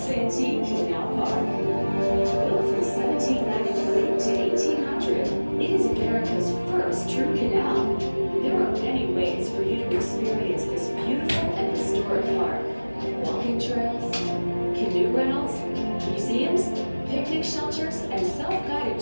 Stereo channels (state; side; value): inverted; both; correlation -1.00